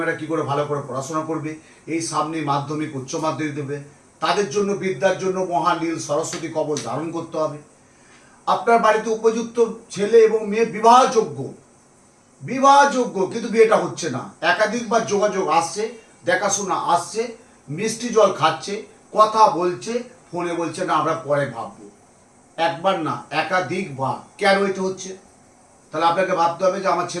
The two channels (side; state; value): both; identical; correlation 1.00